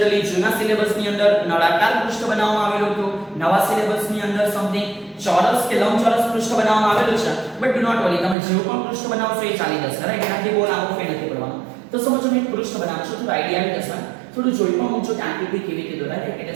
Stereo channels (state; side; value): drops out; left; at 8.3 s